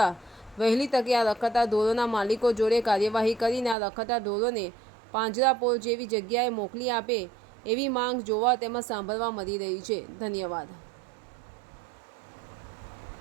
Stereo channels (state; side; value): drops out; left; at 3.8 s